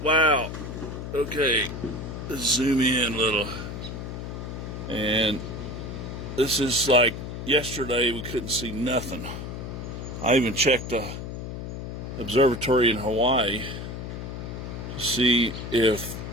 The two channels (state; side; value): noise; left; hum, 7 dB below the sound